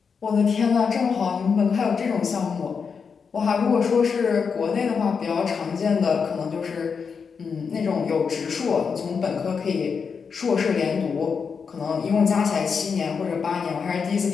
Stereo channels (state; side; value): quieter; right; 5.9 dB